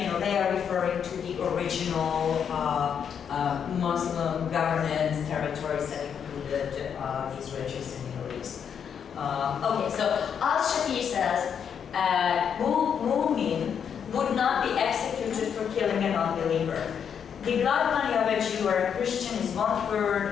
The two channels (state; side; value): quieter; right; 7.7 dB